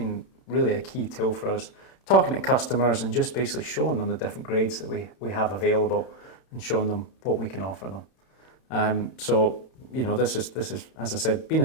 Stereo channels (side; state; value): right; late; 31 ms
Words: really a key tool for us, talking to customers and just basically showing them the different grades that we have available and showing them what we can offer them. So, you know, this is, as I said, been